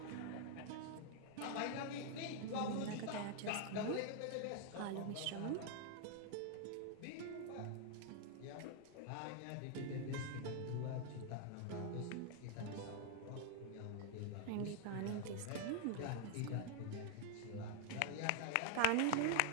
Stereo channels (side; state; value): both; different; correlation 0.00